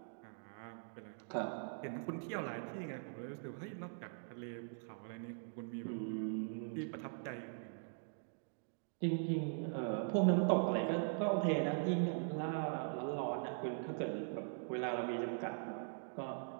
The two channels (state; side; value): silent; left; digital silence